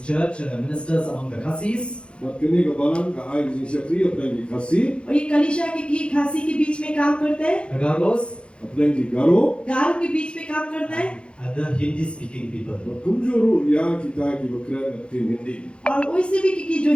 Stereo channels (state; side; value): late; right; 0.057 ms